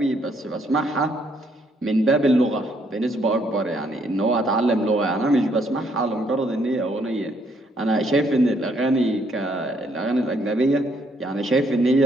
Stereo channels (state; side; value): normal; both; correlation 0.70